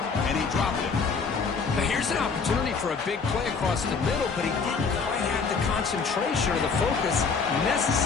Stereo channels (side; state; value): right; quieter; 5.1 dB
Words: and he dropped it. Now here's an opportunity for a big play across the middle, but he didn't quite have the concentration or the focus